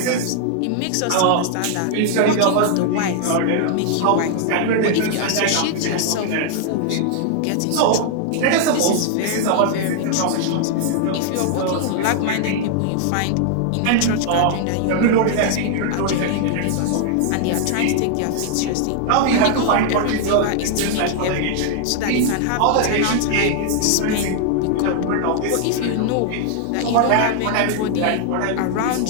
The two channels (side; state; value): both; different; correlation 0.00